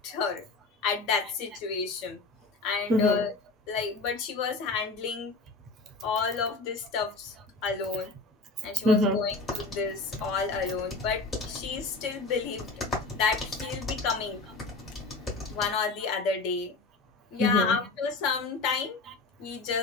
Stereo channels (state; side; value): quieter; right; 3.7 dB